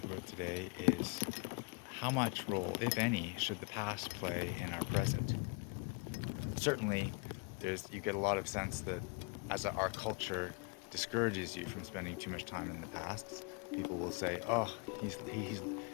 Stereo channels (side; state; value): right; quieter; 31.6 dB